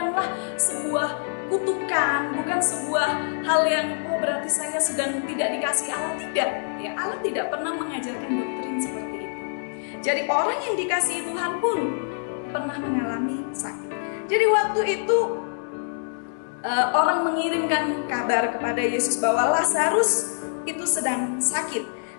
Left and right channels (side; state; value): right; silent; 62 dB below the other